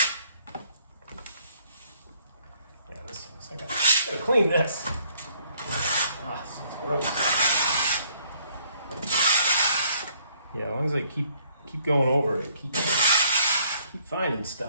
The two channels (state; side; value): inverted; both; correlation -0.62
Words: I gotta clean this. Ah, this is gross. Yeah, as long as I keep going over it, keep finding